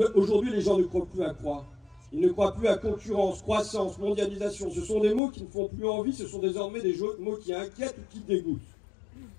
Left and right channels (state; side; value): drops out; right; at 5.2 s